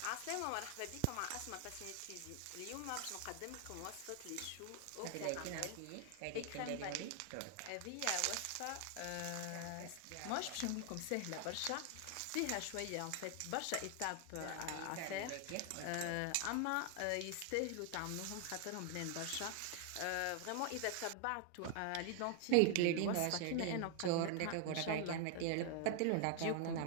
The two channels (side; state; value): both; different; correlation 0.00